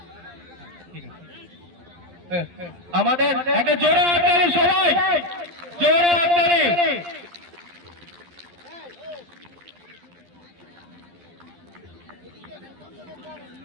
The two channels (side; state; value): left; late; 12 ms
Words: আমাদের একটা জোরে হাততালি, সবাই জোরে হাততালি।